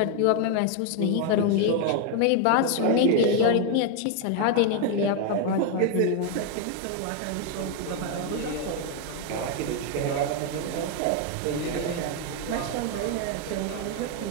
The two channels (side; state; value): both; different; correlation 0.00